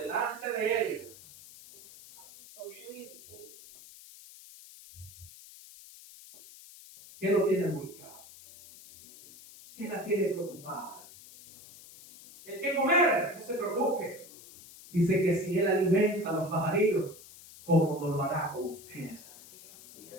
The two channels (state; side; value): noise; left; hiss, 19 dB below the sound